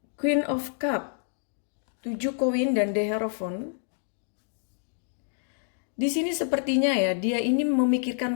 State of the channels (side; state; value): right; silent; digital silence